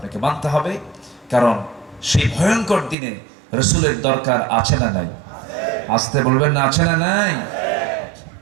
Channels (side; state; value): left; drops out; at 3.0 s